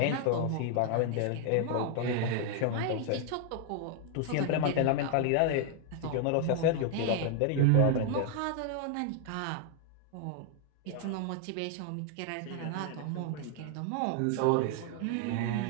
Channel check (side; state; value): both; different; correlation 0.00